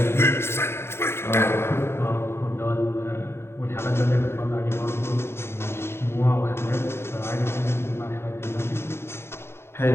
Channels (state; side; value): late; right; 0.12 ms